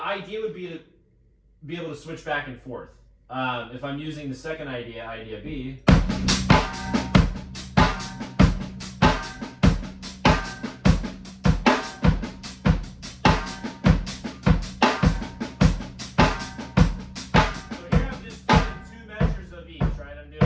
idea would be to be able to switch back and forth. If I'm using the second idea, idea B.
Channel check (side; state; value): both; identical; correlation 1.00